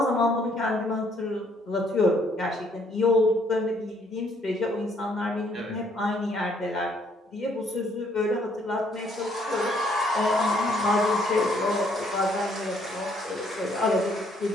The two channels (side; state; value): both; normal; correlation 0.66